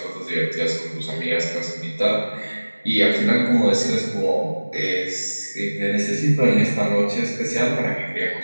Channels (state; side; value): inverted; both; correlation -1.00